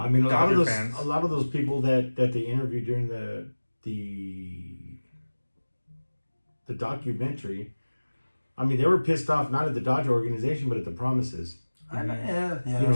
I mean, Dodger fans. A lot of those people that they interviewed during the documentary, I mean, they were pissed off not at the Dodger organization, but at the promises.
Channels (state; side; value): inverted; both; correlation -1.00